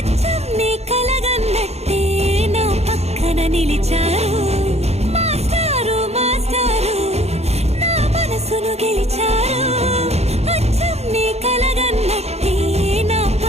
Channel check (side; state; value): left; late; 0.31 ms